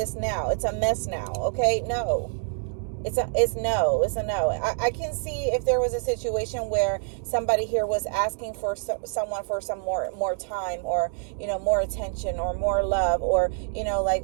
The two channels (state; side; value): silent; left; 57 dB below the other